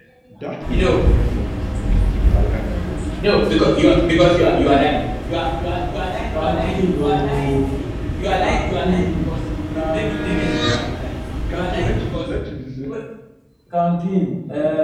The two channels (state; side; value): identical; both; correlation 1.00